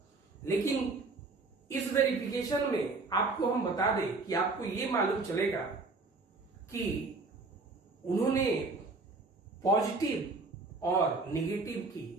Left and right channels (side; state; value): left; quieter; 3.7 dB